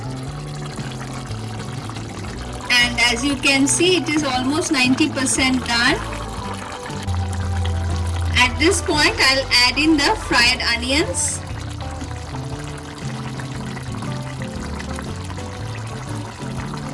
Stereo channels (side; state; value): both; identical; correlation 1.00